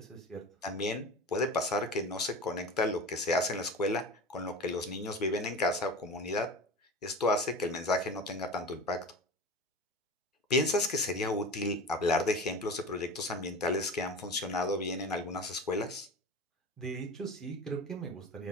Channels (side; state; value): both; normal; correlation 0.32